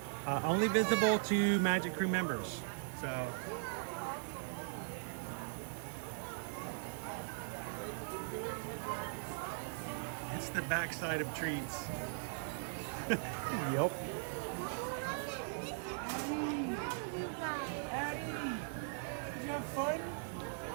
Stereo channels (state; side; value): silent; left; digital silence